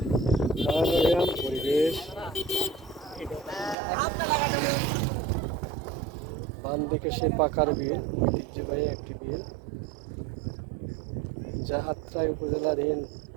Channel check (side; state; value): left; drops out; at 3.8 s